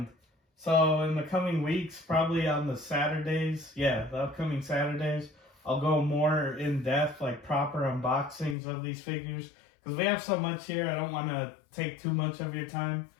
so in the coming weeks, probably on the Saturdays, the upcoming Saturdays, I'll go more in depth, like proper unboxings of these figures. Because we have so much here, I don't want to take too much of your time.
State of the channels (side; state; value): right; drops out; at 8.6 s